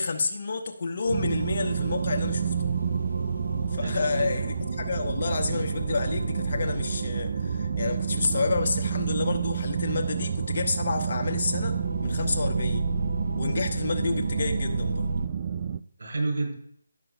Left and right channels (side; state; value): both; inverted; correlation -0.81